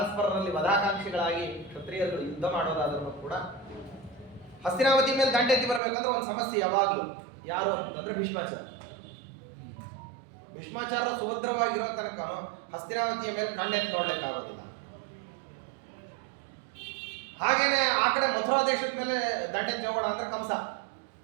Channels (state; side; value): drops out; left; at 5.8 s